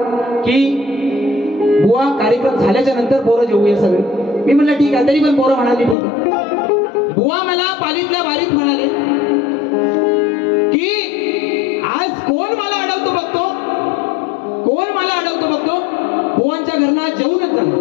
की बुवा कार्यक्रम झाल्याच्या नंतर पोरं जेवूया सगळे. मी म्हणलं ठीक आहे. तरी पण पोरं म्हणाली ठीक आहे. बुवा मला पालीतल्या बारीत म्हणाले की आज कोण मला अडवतो बघतो, कोण मला अडवतो बघतो, बुवांच्या घरना जेवूनच जाणार.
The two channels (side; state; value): right; drops out; at 6.0 s